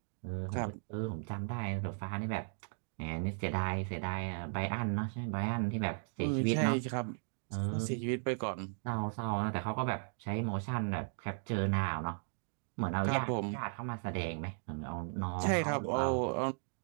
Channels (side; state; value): left; silent; digital silence